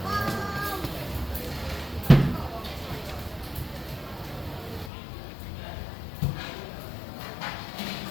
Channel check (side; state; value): right; drops out; at 4.9 s